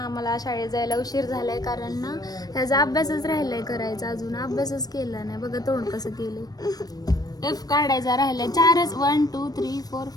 आम्हाला शाळेत जायला उशीर झालाय कारण ना ह्याचा अभ्यासच राहिलाय करायचा. अजून अभ्यासच केला नाही. बघा तोंड कसं केलंय. एफ काढायचा राहिलाय. 4च 1 2 3 4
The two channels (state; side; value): late; right; 0.19 ms